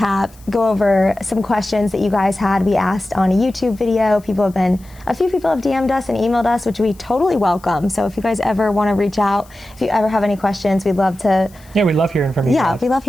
go over some questions that you guys had. We asked on a YouTube video. A few people have DM'd us and emailed us, which we totally welcome. So if you guys ever want to reach out, if you ever have any questions, we'd love to. Yeah, we love hearing from you. Yeah, guys. we love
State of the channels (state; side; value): noise; left; hiss, 27 dB below the sound